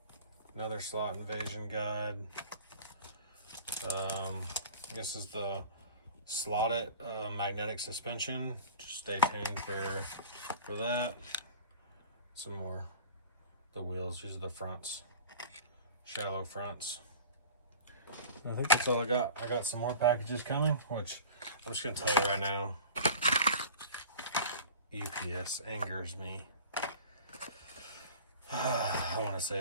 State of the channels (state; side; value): inverted; both; correlation -0.40